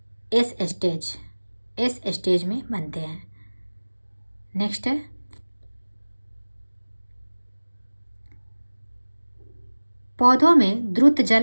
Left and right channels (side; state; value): both; inverted; correlation -1.00